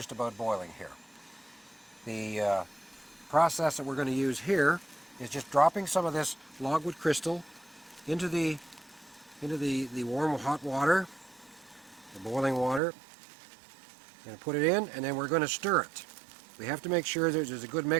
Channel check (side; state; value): left; drops out; at 12.8 s